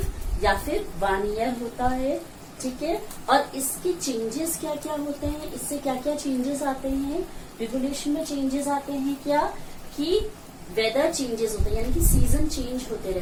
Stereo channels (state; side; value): identical; both; correlation 1.00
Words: या फिर 1 ईयर होता है, ठीक है. और इसके चेंजेस क्या क्या होते हैं, इससे क्या क्या चेंजेस आते हैं, रिवोल्यूशन में चेंजेस आते हैं क्या, कि वेदर चेंजेस होते हैं, यानी कि सीजन चेंज होते